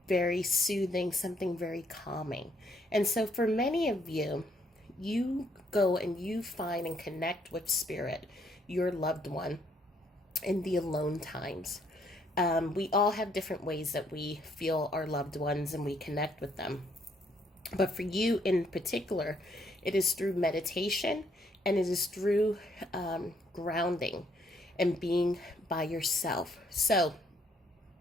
very soothing, something very calming. And so for many of you, you go and you find and connect with spirit, your loved one, in the alone times. We all have different ways that we feel our loved ones and we connect with them. But for you in particular, it is through meditation and it is through grounding and being by yourself. So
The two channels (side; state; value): both; normal; correlation 0.69